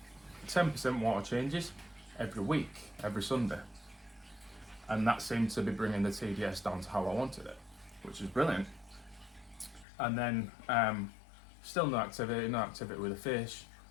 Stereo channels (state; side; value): drops out; right; at 9.9 s